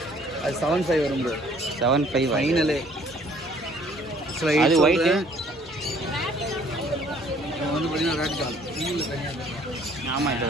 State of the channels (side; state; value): both; normal; correlation 0.58